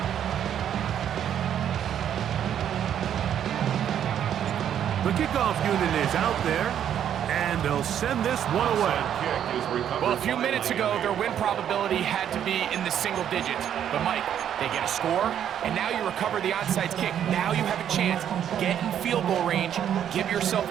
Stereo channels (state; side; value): quieter; left; 9.7 dB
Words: The kickoff unit is out there, and they'll send this one away. Well, a few minutes ago, their win probability had to be in the single digits. But, Mike, they get a score, and now you recover the onside kick. Now you have a chance. Get in field goal range. Give yourself